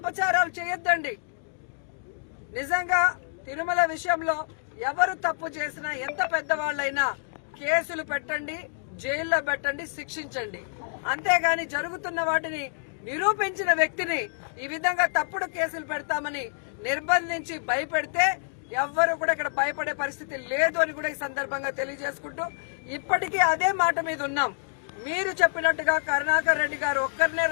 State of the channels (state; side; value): silent; right; digital silence